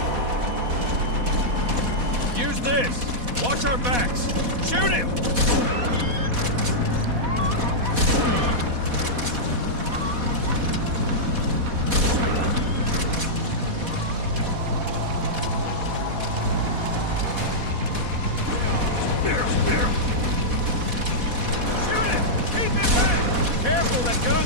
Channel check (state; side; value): late; left; 4.1 ms